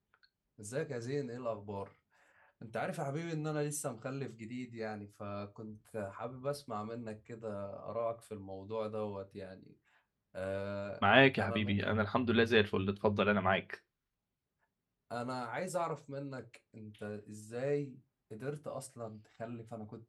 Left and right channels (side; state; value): both; identical; correlation 1.00